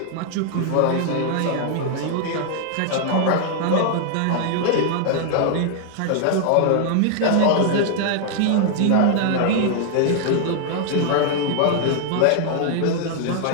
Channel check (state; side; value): different; both; correlation 0.00